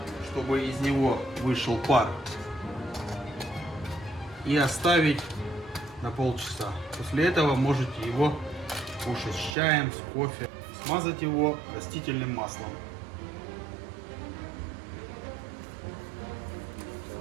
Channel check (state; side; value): drops out; left; at 9.6 s